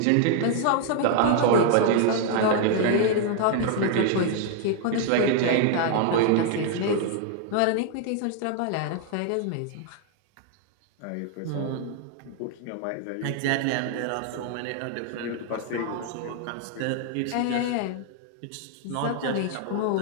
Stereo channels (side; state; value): both; different; correlation 0.00